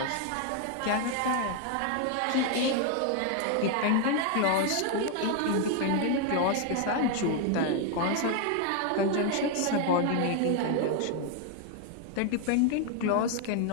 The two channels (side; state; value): both; different; correlation 0.01